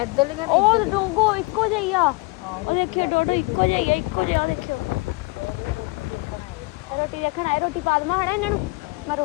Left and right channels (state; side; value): quieter; right; 24.8 dB